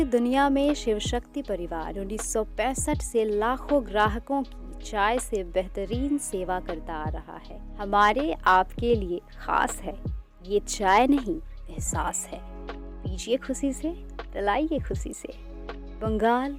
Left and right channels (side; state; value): both; identical; correlation 1.00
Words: दुनिया में शिव शक्ति परिवार 1965 से लाखों ग्राहकों की चाय से बेहतरीन सेवा करता आ रहा है। हमारे आपके लिए खास है, ये चाय नहीं एहसास है। पीजिए खुशी से, पिलाइए खुशी से। बंगाल